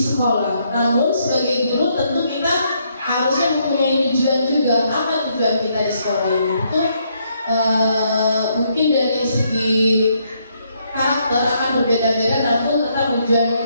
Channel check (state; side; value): inverted; both; correlation -0.74